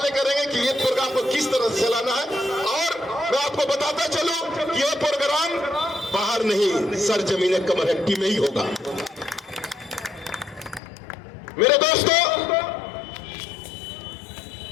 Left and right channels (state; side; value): drops out; right; at 10.8 s